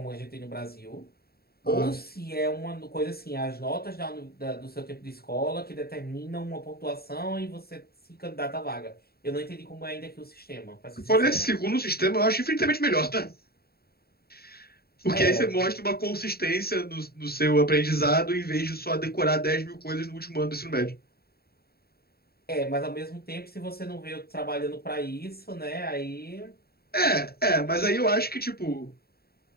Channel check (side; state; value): right; late; 0.45 ms